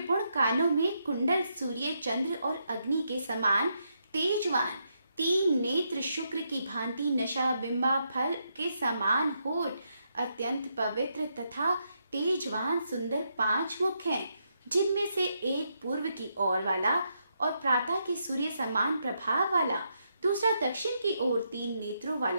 कानों में कुंडल, सूर्य, चंद्र और अग्नि के समान तेजवान, तीन नेत्र, शुक्र की भांति नशा, बिंबा फल के समान होठ, अत्यंत पवित्र तथा तेजवान सुंदर 5 मुख हैं, जिनमें से एक पूर्व की ओर वाला और प्रातः के सूर्य समान प्रभाव वाला, दूसरा दक्षिण की ओर 3 नेत्रों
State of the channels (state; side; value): inverted; both; correlation -0.80